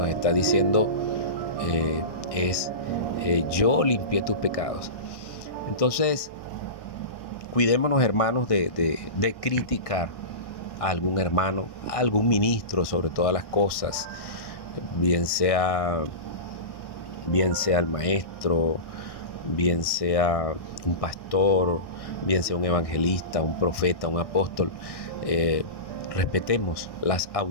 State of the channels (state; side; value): late; right; 1.1 ms